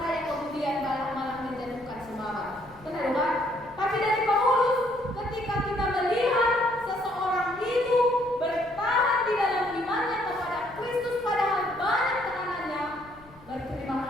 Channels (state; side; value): noise; left; rumble, 24 dB below the sound